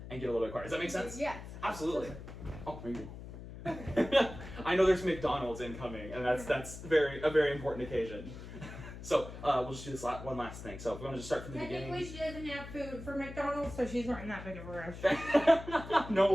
and get a little bit quieter. Does that make sense? Yes. Absolutely. Oh, maybe. I know there's McDonald's incoming, and that's a very important occasion. So we'll just do this one last thing. So if we want to just start from the beginning. Technically, she doesn't have food for McDonald's, so she's not in that big of a rush.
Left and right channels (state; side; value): noise; left; hum, 12 dB below the sound